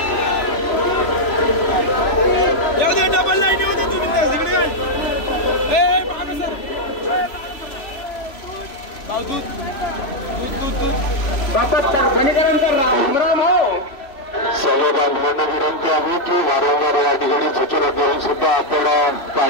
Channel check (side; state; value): right; late; 3.0 ms